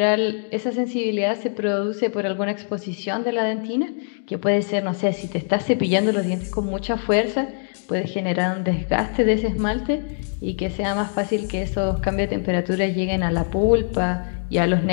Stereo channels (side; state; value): right; silent; digital silence